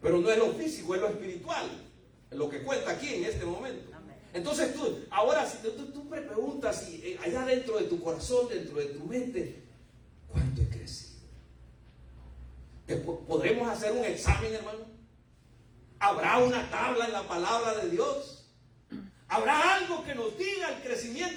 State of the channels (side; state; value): both; identical; correlation 1.00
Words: Pero no es lo físico, es lo espiritual. Es lo que cuenta aquí en este momento. Entonces ahora si tú me preguntas allá dentro de tu corazón, dentro de tu mente, ¿cuánto he crecido? ¿Podremos hacer un examen, hermano? ¿Habrá una tabla en la palabra de Dios? ¿Habrá algo que nos diga el